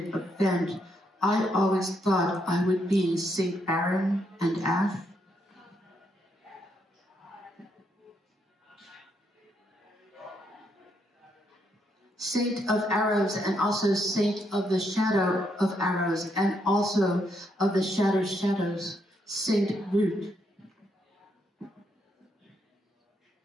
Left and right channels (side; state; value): both; normal; correlation 0.77